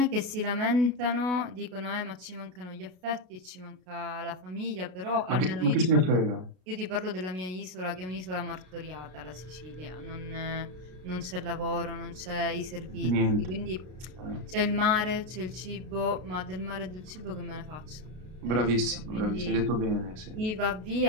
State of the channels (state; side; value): late; left; 32 ms